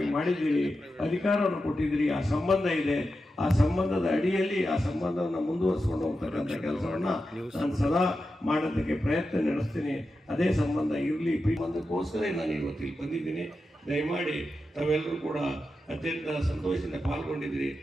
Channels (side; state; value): both; normal; correlation 0.90